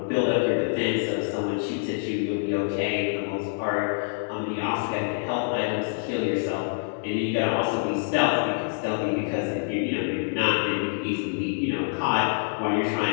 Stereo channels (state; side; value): silent; right; 61 dB below the other